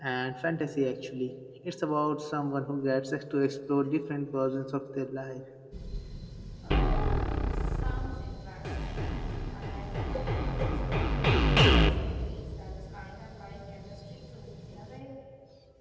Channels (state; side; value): identical; both; correlation 1.00